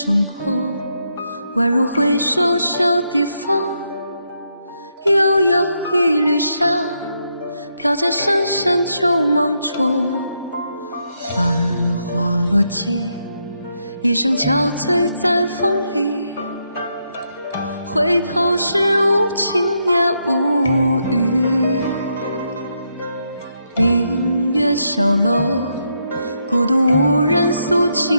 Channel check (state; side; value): inverted; both; correlation -0.80